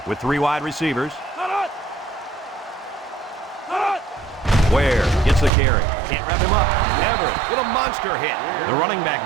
with 3 wide receivers. Ware gets the carry. Can't wrap him up. Everett with a monster hit. The running back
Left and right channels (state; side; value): drops out; left; at 5.5 s